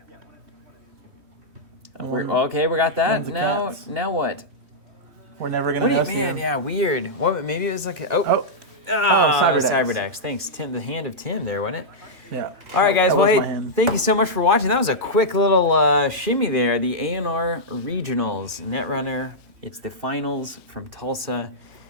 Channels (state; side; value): late; left; 3.2 ms